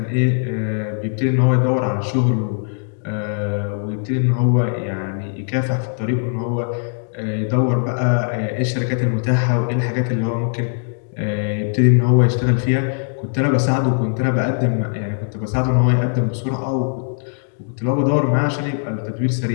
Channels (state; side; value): silent; right; digital silence